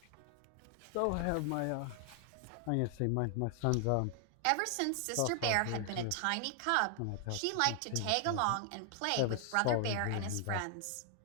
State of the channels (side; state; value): both; different; correlation 0.00